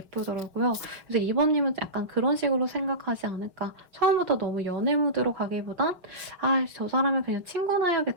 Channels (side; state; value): left; late; 5.4 ms